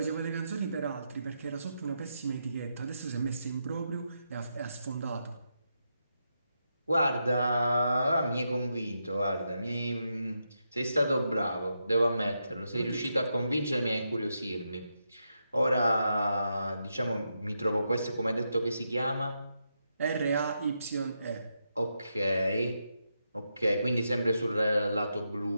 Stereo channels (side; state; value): both; inverted; correlation -0.84